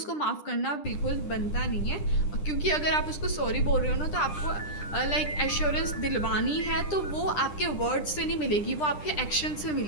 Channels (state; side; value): late; right; 10 ms